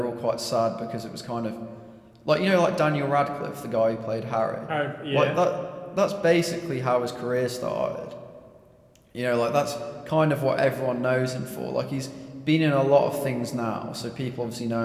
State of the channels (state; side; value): identical; both; correlation 1.00